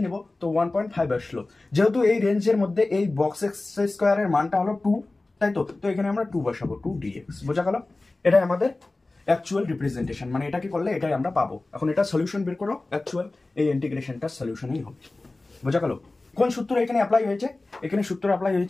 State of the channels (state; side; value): quieter; right; 3.1 dB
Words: নেব, তো 1.5 আসলো। যেহেতু এই রেঞ্জের মধ্যে এই বক্স এক্স স্কোয়ারের মানটা হলো 2, তাই তো? তো এখানে আমরা 2 বসাবো, 2 dx। বোঝা গেল? এটাই আমাদের অ্যাকচুয়াল রিপ্রেজেন্টেশন, মানে এটাকে করলে এটাই আমরা পাবো। এখন এটা সলিউশন বের করো, অ্যাকচুয়াল এই ইন্টিগ্রেশনটার সলিউশনই হবে। বোঝা গেল? কোন সূত্র এখানে অ্যাপ্লাই হয়েছে? এখানে সূত্র অ্যাপ্লাই